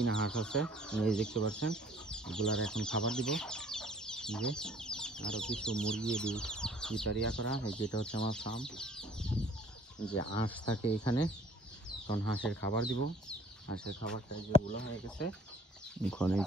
হাঁস আছে, এই দেখতে পাচ্ছেন। এগুলার এখন খাবার দিব। যে আরো কিছু মুরগি ভিতরিয়া করা, এই যেটা হচ্ছে আমার ফার্ম। যে হাঁস থাকে এখানে, তখন হাঁসের খাবার দিব। হাঁসের খাবারটা যেগুলো হয়ে গেছে, ওখানে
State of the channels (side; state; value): both; normal; correlation 0.57